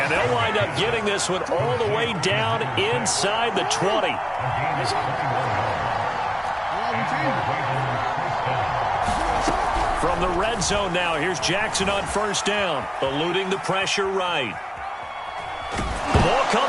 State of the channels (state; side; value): identical; both; correlation 1.00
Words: they'll wind up getting this one all the way down inside the 20. From the red zone now, here's Jackson on first down, eluding the pressure right. The ball